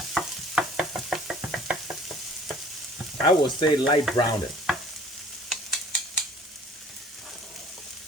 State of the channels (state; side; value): normal; both; correlation 0.52